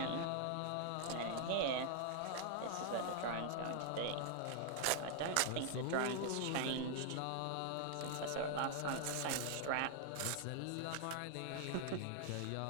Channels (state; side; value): different; both; correlation 0.00